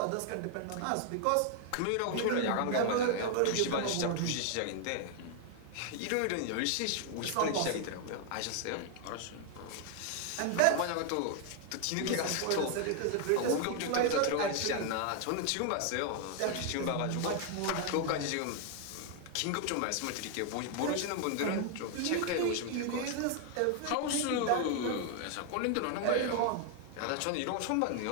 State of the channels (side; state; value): both; different; correlation 0.00